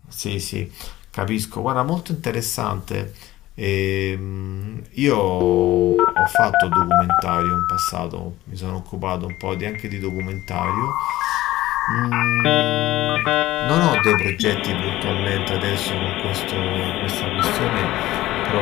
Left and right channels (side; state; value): right; quieter; 16.1 dB